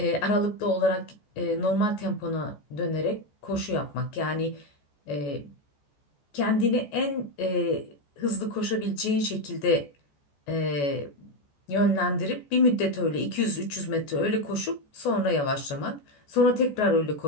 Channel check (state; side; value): late; right; 14 ms